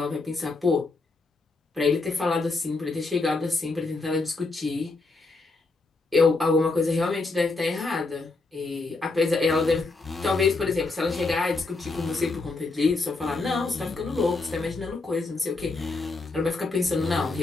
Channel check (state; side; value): quieter; right; 3.6 dB